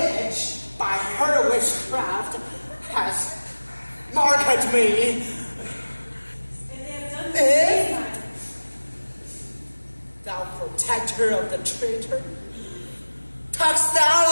by her witchcraft, has marked me. And they have done this time. Thou protector of the traitor, talkest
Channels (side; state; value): both; inverted; correlation -1.00